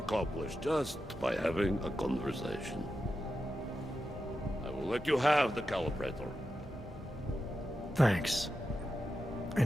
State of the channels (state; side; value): normal; both; correlation 0.89